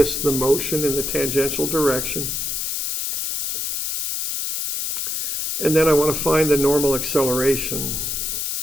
the motion in the tangential direction. And then I want to find the normal acceleration.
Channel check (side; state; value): left; noise; hiss, 2 dB below the sound